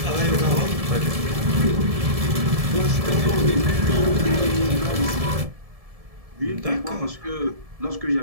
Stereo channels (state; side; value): late; left; 1.7 ms